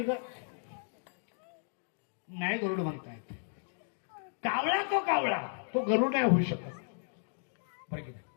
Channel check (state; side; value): silent; right; digital silence